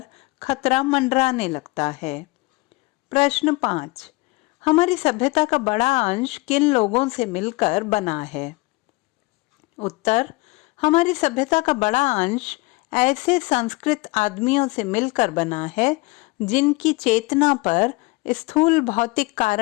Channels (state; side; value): quieter; right; 24.1 dB